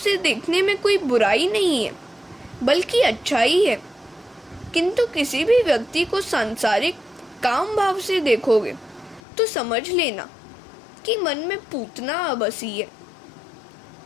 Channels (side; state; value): right; drops out; at 9.2 s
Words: देखने में कोई बुराई नहीं है, बल्कि अच्छाई है। किंतु किसी भी व्यक्ति को सांसारिक काम भाव से देखोगे तो समझ लेना कि मन में पूतना आ बसी है।